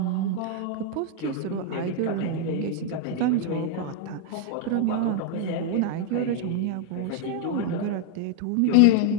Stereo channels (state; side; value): different; both; correlation 0.00